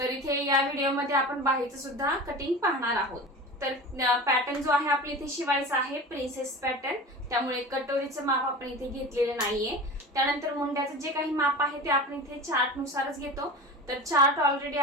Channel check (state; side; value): normal; both; correlation 0.32